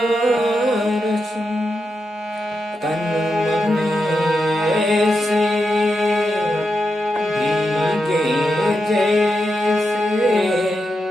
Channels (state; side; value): normal; both; correlation 0.86